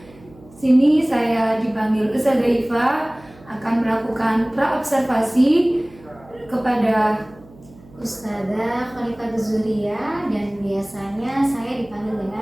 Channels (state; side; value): noise; right; hum, 24 dB below the sound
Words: Sini saya dipanggil Ustazah Iva akan melakukan praobservasi kepada Ustazah Khalifah Zuria, dan biasanya saya dipanggil